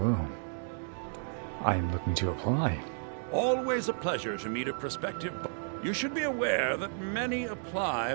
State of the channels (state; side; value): silent; left; digital silence